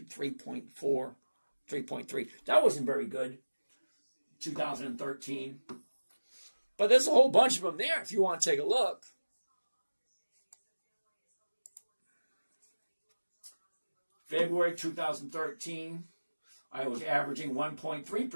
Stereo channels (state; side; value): inverted; both; correlation -1.00